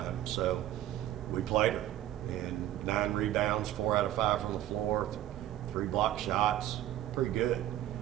So we played her, and 9 rebounds, 4 out of 5 from the floor, 3 block shots, pretty good.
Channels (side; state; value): left; quieter; 13.1 dB